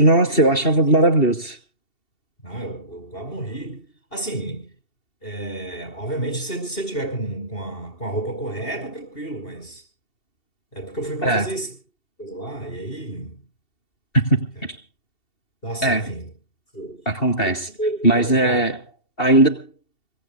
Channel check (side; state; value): right; late; 2.7 ms